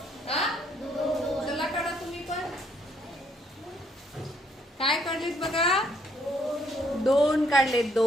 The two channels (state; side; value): normal; both; correlation 0.69